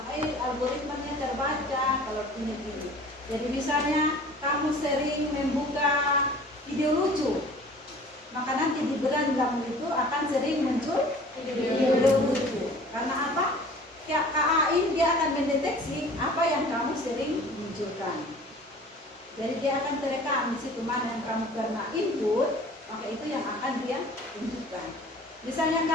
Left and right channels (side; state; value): both; normal; correlation 0.46